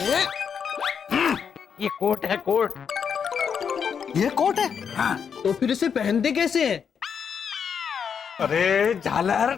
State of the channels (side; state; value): right; quieter; 7.0 dB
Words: ये कोट है, कोट। ये कोट है? हाँ। तो फिर इसे पहनते कैसे हैं? अरे झालर,